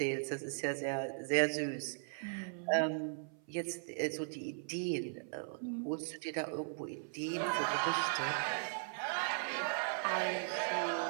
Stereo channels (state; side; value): silent; left; 52 dB below the other